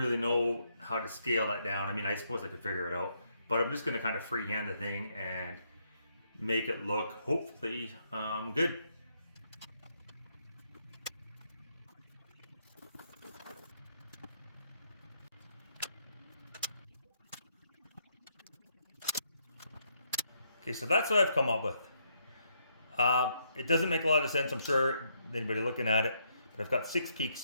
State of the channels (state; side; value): inverted; both; correlation -0.75